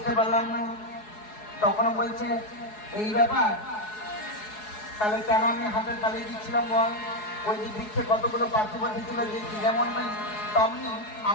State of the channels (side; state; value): right; late; 4.7 ms